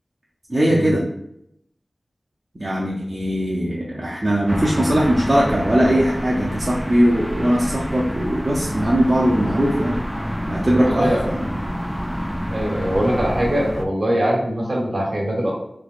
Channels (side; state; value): both; normal; correlation 0.97